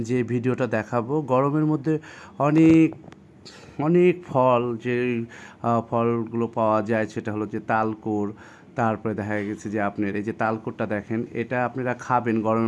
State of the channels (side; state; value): both; identical; correlation 1.00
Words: যে ভিডিওটা দেখাবো, গরমের মধ্যে অনেক অনেক ফল যে ফলগুলো পাওয়া যায় সেটা হলো যে তালকুর। তারপরে দেখা গেছে যে আপনার এই যে তালকুরটা দেখেন, এটা আপনারা খাবেন